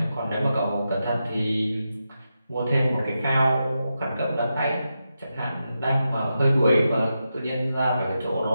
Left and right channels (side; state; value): both; inverted; correlation -0.88